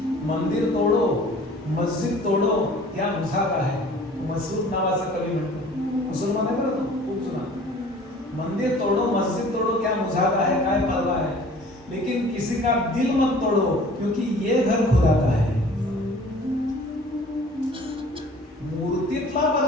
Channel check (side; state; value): both; normal; correlation 0.48